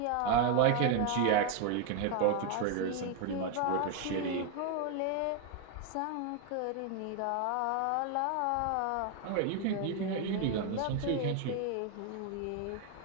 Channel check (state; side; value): different; both; correlation 0.01